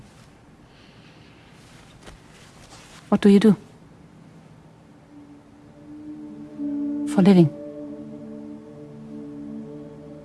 What do you do? For a living?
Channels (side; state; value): both; identical; correlation 1.00